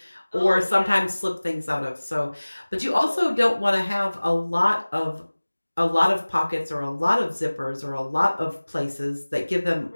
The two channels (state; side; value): inverted; both; correlation -1.00